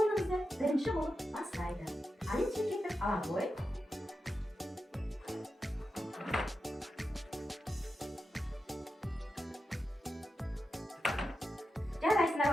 бірінші болып бастайды. Алин шекеттік ала ғой. Жарайсыңдар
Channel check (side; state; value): both; normal; correlation 0.89